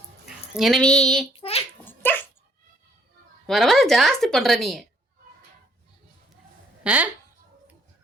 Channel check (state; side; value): normal; both; correlation 0.64